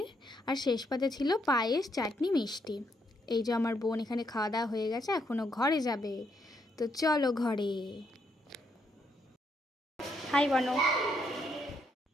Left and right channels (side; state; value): both; normal; correlation 0.76